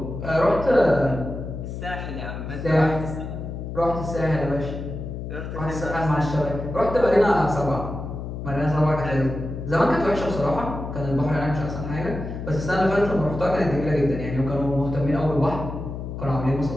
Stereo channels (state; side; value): noise; left; hum, 7 dB below the sound